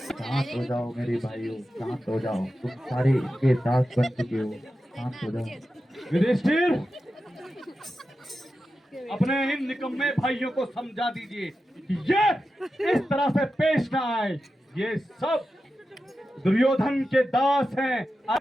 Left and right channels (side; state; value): both; normal; correlation 0.91